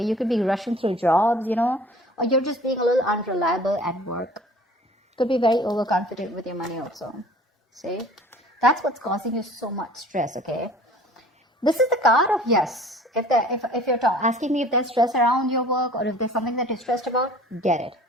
You could be rushing through jobs, or you're just being a little unreliable at work. Could be very overconfident with your money also. See? That's what's causing you so much stress, okay? This is the card of yes. If you're asking me if there's stress around your work or if there's something that you're stressed about, get it,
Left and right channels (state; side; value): normal; both; correlation 0.48